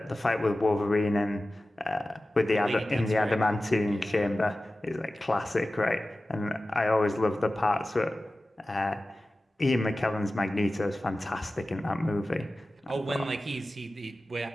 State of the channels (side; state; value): both; normal; correlation 0.96